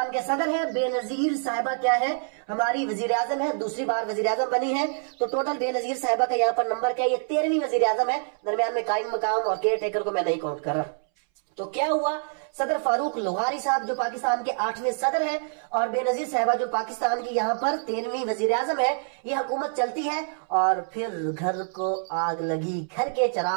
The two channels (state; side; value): silent; left; 61 dB below the other